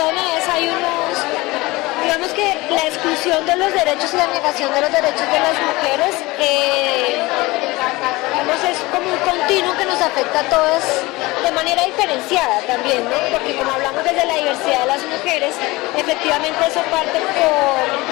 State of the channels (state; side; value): quieter; right; 21.4 dB